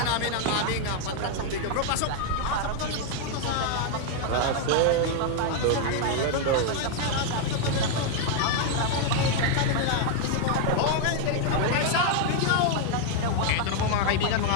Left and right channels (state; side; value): different; both; correlation 0.00